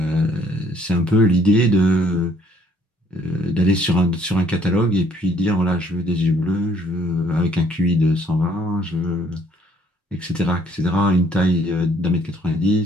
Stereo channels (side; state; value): both; normal; correlation 0.62